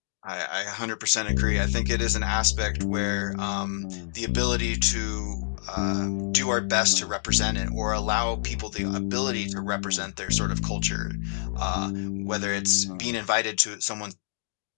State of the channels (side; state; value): right; silent; digital silence